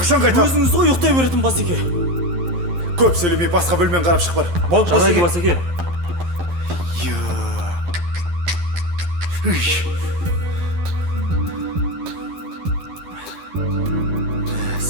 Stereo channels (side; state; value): left; late; 11 ms